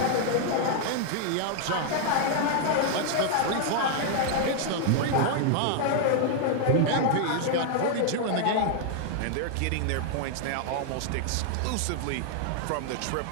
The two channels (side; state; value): both; different; correlation 0.00